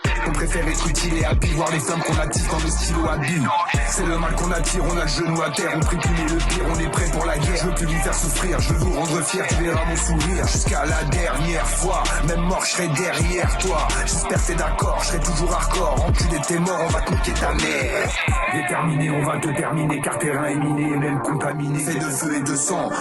On préfère être utile et habile, voir les flammes qu'on attise dans le stylo habile. C'est le mal qu'on attire, on a le genou à terre, on prie punir le pire, on est prêt pour la guerre. Je veux plus lui faire souffrir, je veux vous rendre fier, tu verras mon sourire. Jusqu'à la dernière fois, même mort je serai derrière toi. J'espère que t'es d'accord, je serai toujours hardcore. Enculé t'es mort, on va te niquer ta mère. Déterminé, on va te terminer, car terrain est miné, même contaminé. Fait de feu et de sang,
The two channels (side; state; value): both; identical; correlation 1.00